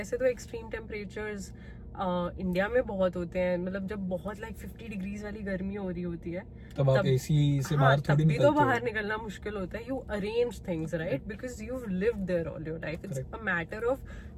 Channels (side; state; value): both; identical; correlation 1.00